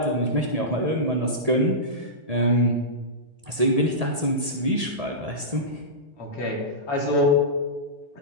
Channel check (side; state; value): left; late; 1.8 ms